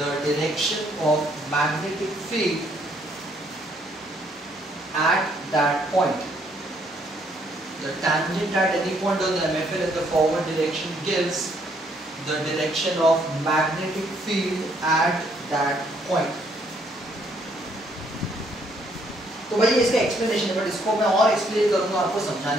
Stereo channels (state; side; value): normal; both; correlation 0.68